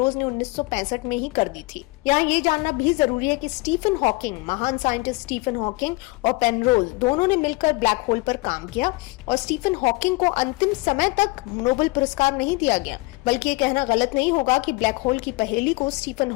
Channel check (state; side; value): quieter; right; 23.6 dB